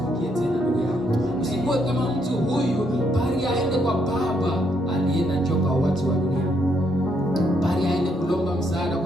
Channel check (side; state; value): both; normal; correlation 0.74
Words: tena ndugu yangu. Usikuwe kama mtu huyu, bali aende kwa baba. Alienda njoo kwa watu wa dunia, bali aende kulomba msaada